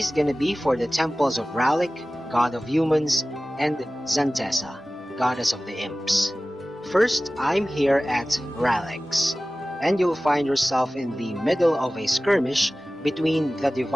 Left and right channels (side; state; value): both; normal; correlation 0.96